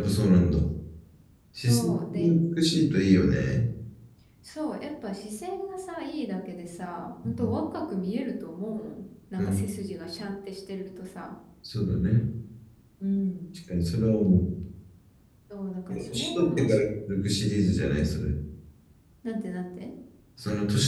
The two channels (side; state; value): both; identical; correlation 1.00